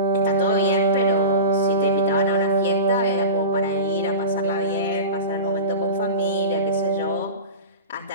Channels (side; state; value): both; inverted; correlation -0.32